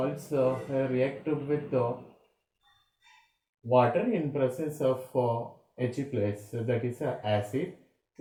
reacted with water in presence of H plus, that is acid,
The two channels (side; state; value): both; identical; correlation 1.00